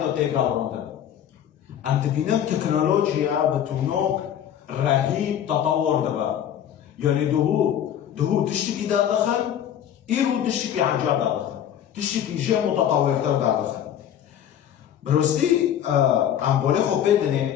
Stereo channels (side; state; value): right; quieter; 10.0 dB